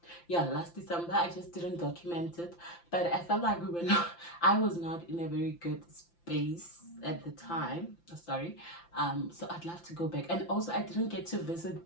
Yeah, last December. I just didn't document it, but I felt like we were not, I was not in a very good space at the time. Sorry. So I'd love to go back. And also, I didn't get to visit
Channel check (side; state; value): right; late; 5.8 ms